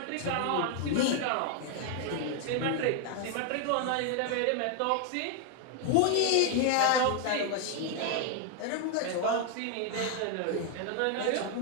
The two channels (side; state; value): both; different; correlation 0.00